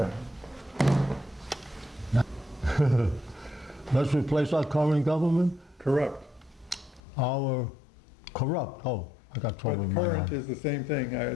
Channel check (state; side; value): drops out; right; at 7.0 s